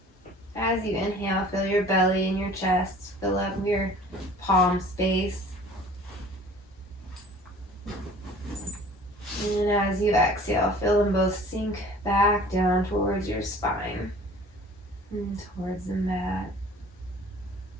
As you inhale, feel your belly and your chest, fill up your palm space. And as you exhale, feel them both sink back down towards your spine and towards the mat.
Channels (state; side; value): normal; both; correlation 0.48